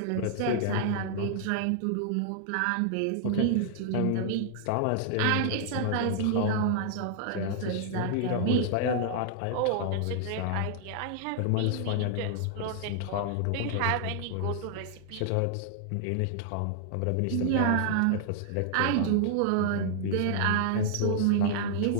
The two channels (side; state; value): both; different; correlation -0.01